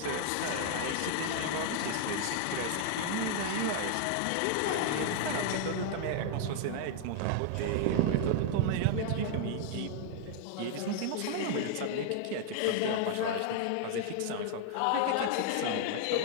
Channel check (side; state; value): both; different; correlation 0.00